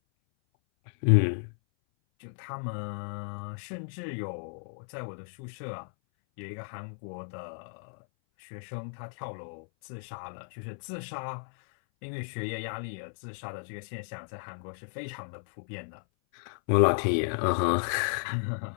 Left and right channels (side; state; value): right; silent; 56 dB below the other